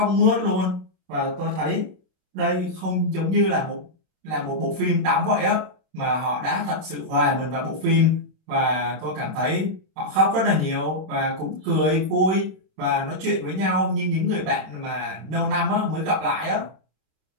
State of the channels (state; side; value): late; left; 31 ms